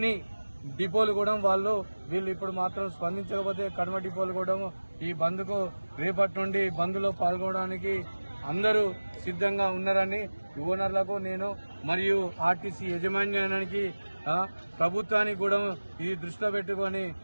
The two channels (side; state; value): both; inverted; correlation -1.00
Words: డిపోలు కూడా వీళ్ళు ఇప్పుడు మాత్రం స్పందించకపోతే కడమ డిపోలు కూడా ఈ బంద్కు రేపటి నుండి బంద్లో పాల్గొనడానికి అందరూ సిద్ధంగా ఉన్నారని ఓనర్లకు నేను మరియు ఆర్టీసీ యాజమాన్యానికి ప్రభుత్వానికి కూడా ఇది దృష్టిలో పెట్టుకుని